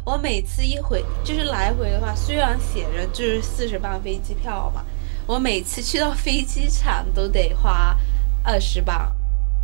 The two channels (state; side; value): silent; left; 66 dB below the other